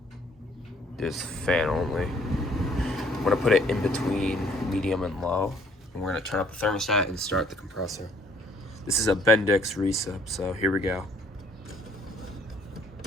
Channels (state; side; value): normal; both; correlation 0.61